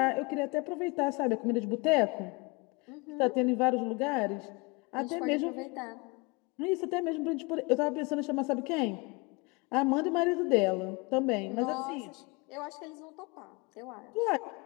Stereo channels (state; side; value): quieter; right; 27.3 dB